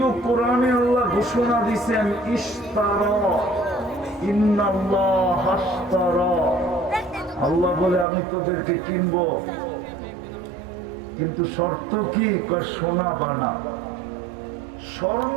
কোরআনে আল্লাহ ঘোষণা দিয়েছেন ইশতারা, ইন্নাল্লাহ হাশতারা, আল্লাহ বলে আমি তোদেরকে কিনবো, কিন্তু শর্ত কি? সোনা বানা,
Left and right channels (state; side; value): drops out; left; at 8.1 s